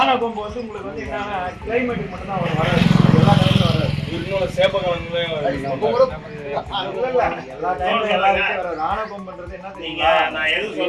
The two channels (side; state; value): both; identical; correlation 1.00